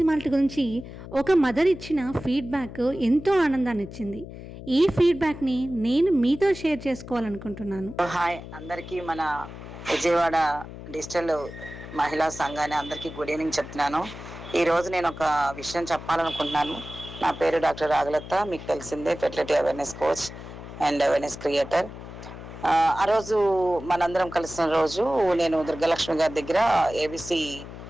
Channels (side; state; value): left; noise; hum, 13 dB below the sound